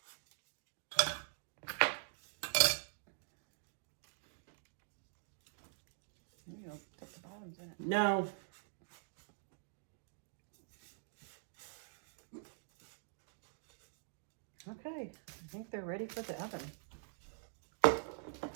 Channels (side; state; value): left; silent; digital silence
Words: Maybe I'll put the bottoms in it. No. Okay, I think they're ready for the oven.